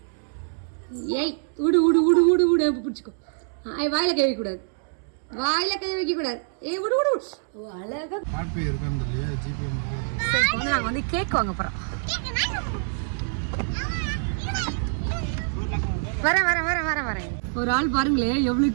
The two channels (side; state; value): left; silent; 61 dB below the other